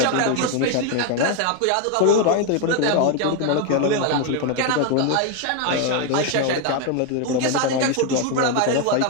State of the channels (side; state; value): both; different; correlation 0.01